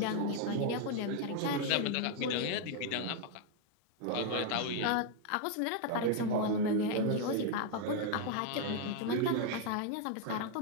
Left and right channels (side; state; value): both; different; correlation 0.00